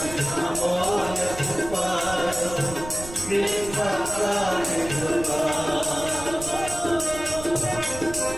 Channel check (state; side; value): noise; right; rumble, 12 dB below the sound